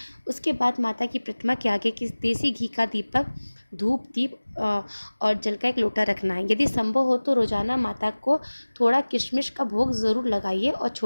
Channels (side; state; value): both; inverted; correlation -1.00